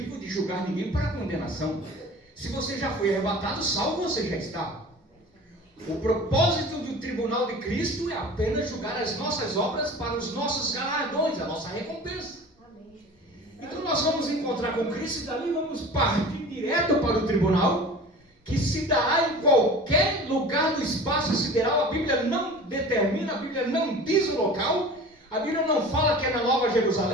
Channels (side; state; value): both; normal; correlation 0.40